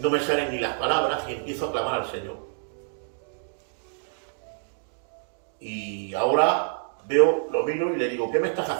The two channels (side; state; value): left; silent; digital silence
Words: me salen ni las palabras y empiezo a clamar al Señor. Y ahora lo miro y le digo, ¿qué me estás